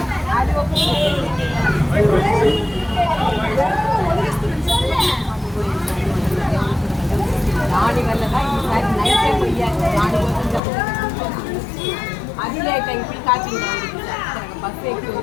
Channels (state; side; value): drops out; right; at 10.6 s